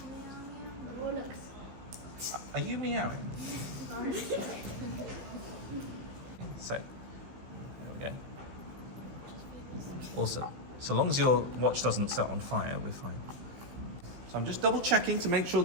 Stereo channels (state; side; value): late; left; 16 ms